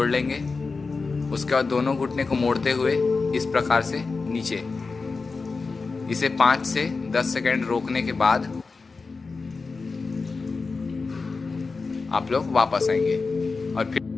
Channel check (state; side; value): quieter; right; 4.3 dB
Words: लेंगे। उसके बाद दोनों घुटने को मोड़ते हुए इस प्रकार से नीचे। इसे 5 से 10 सेकंड रोकने के बाद आप लोग वापस आएंगे और फिर